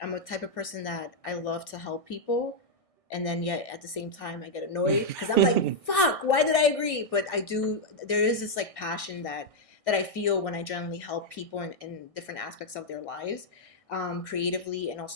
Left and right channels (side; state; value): right; late; 1.6 ms